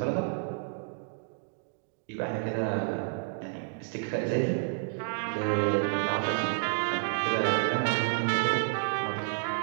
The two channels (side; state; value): left; silent; digital silence